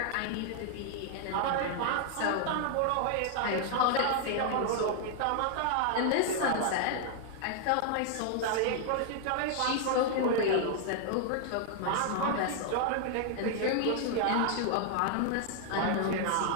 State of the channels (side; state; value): both; different; correlation 0.00